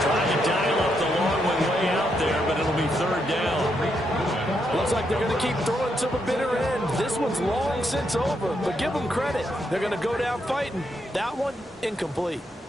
Trying to dial up the long one way out there, but it'll be third down. Looks like they're going to keep throwing to the bitter end. This one's long since over, but give them credit. They're going to go down fighting. That one, incomplete.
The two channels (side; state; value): both; normal; correlation 0.79